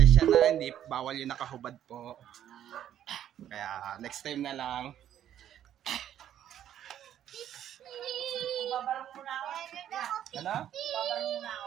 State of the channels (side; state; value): left; quieter; 10.8 dB